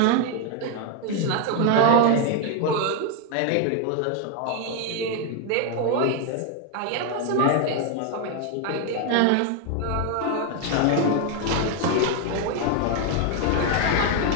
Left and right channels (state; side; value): different; both; correlation 0.01